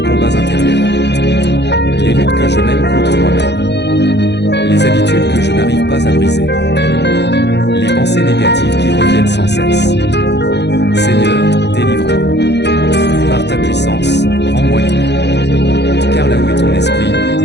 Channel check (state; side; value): late; right; 0.50 ms